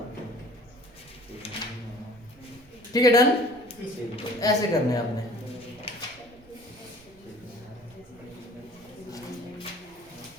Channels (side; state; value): right; noise; rumble, 25 dB below the sound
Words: ठीक है डन तो ऐसे करने हैं आपने